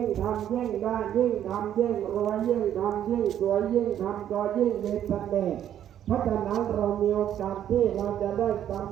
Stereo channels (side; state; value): left; quieter; 10.6 dB